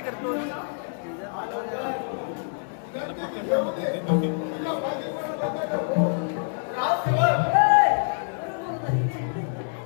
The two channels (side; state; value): right; silent; digital silence